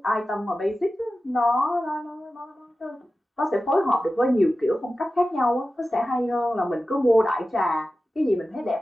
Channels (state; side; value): normal; both; correlation 0.94